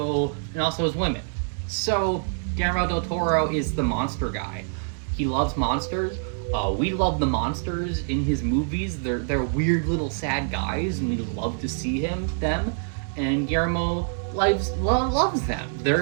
his women. So Guillermo del Toro is the monster guy. He loves monsters. We love the monsters in his movies. They're weird little sad guys, and we love to see them. And Guillermo loves them.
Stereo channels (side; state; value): left; silent; digital silence